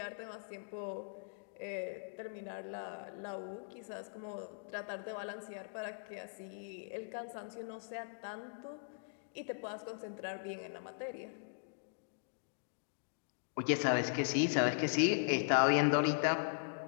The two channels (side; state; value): right; silent; digital silence